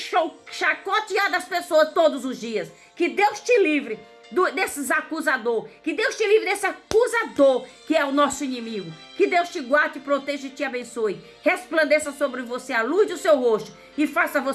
as pessoas todos os dias. Que Deus te livre desses acusadores. Que Deus te livre desse acusador que é o nosso inimigo. Que Deus te guarde, proteja e te abençoe. Resplandeça sobre você a luz do seu rosto e faça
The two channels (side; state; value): both; identical; correlation 1.00